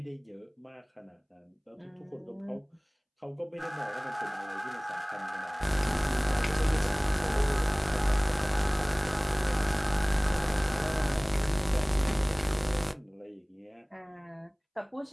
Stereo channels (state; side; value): identical; both; correlation 1.00